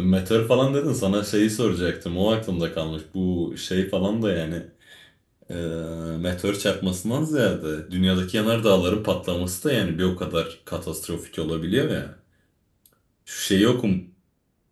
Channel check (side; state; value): both; identical; correlation 1.00